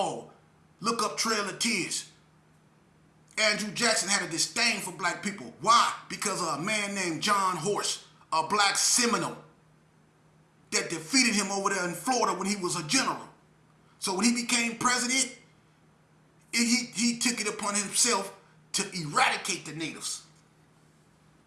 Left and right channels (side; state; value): both; identical; correlation 1.00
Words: Look up Trail of Tears. Andrew Jackson had a disdain for black people. Why? Because of a man named John Horse, a black Seminole, that defeated him over there in Florida when he was a general. So when he became president, he took it upon himself to eradicate the natives.